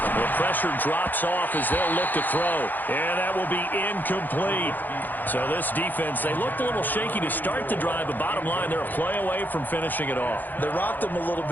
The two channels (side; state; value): right; late; 0.086 ms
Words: pressure drops off as they'll look to throw. And that will be incomplete. So this defense, they looked a little shaky to start the drive, but bottom line, they're a play away from finishing it off. They rocked them a little